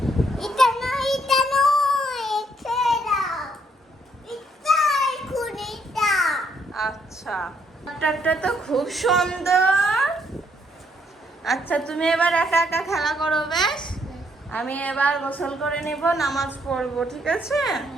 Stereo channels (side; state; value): both; normal; correlation 0.71